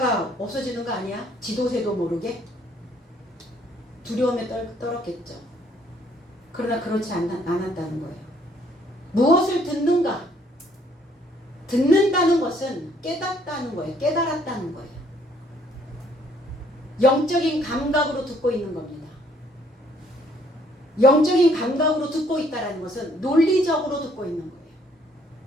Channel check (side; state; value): both; normal; correlation 0.64